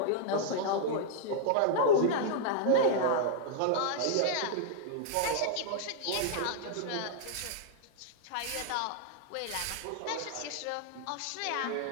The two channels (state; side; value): different; both; correlation -0.01